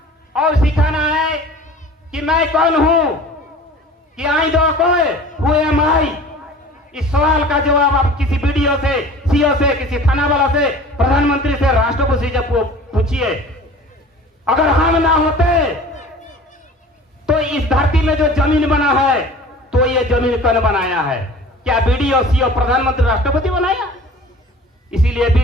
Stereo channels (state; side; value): normal; both; correlation 0.43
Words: और सिखाना है कि मैं कौन हूं, कि आई दो कोई हु एम आई। इस सवाल का जवाब आप किसी वीडियो से, सीओ से, किसी थाना वाला से, प्रधानमंत्री से, राष्ट्रपति से पूछिए। अगर हम ना होते तो इस धरती में जो जमीन बना है तो ये जमीन कौन बनाया है? क्या वीडियो, सीओ, प्रधानमंत्री, राष्ट्रपति बनाया? इसीलिए